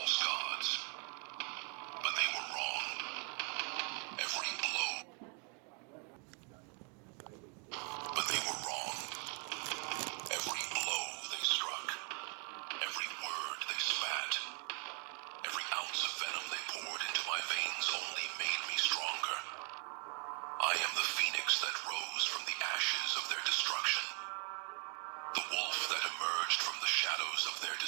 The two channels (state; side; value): quieter; left; 37.9 dB